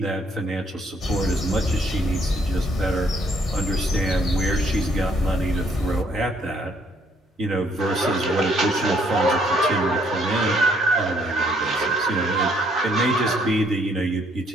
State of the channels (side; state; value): both; normal; correlation 0.67